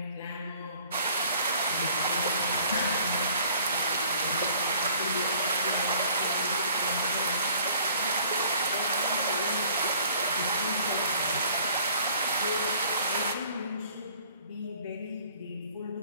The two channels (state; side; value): inverted; both; correlation -0.55